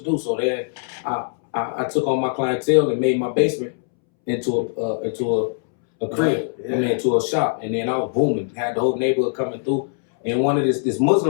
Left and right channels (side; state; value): right; silent; 65 dB below the other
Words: do? So then I took on my clientele and made my basement into a crib. Into a shop, and then I was booming. Had the whole neighborhood coming through, and one of this